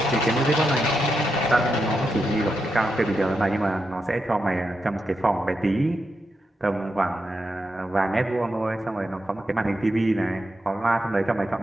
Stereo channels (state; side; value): normal; both; correlation 0.86